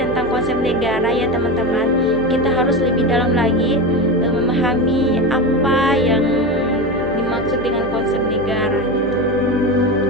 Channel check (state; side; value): noise; left; hum, 17 dB below the sound